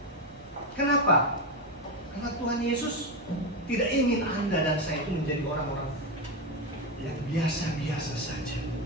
Kenapa? Karena Tuhan Yesus tidak ingin Anda dan saya itu menjadi orang-orang yang biasa-biasa saja.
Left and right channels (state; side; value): normal; both; correlation 0.12